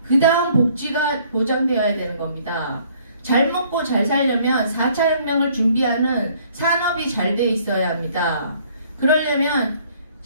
그 다음 복지가 보장되어야 되는 겁니다. 잘 먹고 잘 살려면 4차 혁명을 준비하는 산업이 잘 돼 있어야 합니다. 그러려면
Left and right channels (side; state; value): both; inverted; correlation -0.60